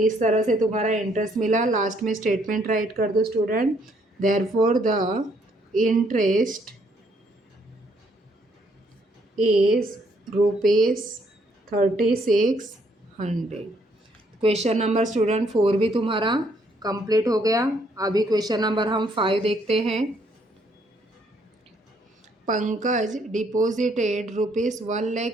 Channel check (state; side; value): normal; both; correlation 0.69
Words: तरह से तुम्हारा इंटरेस्ट मिला। लास्ट में स्टेटमेंट राइट कर दो student, therefore the interest is ₹3600। Question number student 4 भी तुम्हारा कंप्लीट हो गया। अभी क्वेश्चन नंबर हम 5 देखते हैं। Pankaj deposited